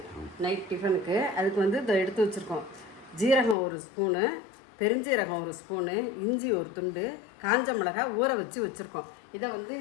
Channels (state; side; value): drops out; right; at 3.6 s